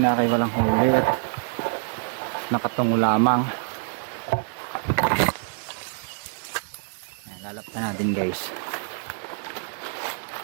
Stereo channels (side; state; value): left; silent; digital silence